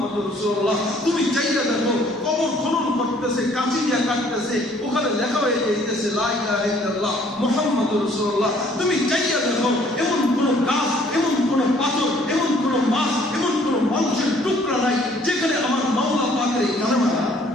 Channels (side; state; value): both; normal; correlation 0.60